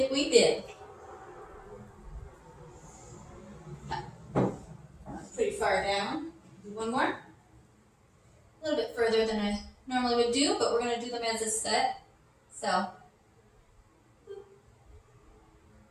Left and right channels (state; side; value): identical; both; correlation 1.00